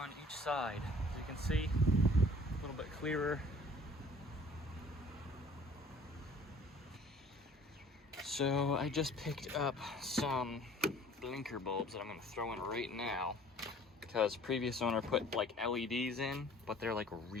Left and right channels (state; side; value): normal; both; correlation 0.52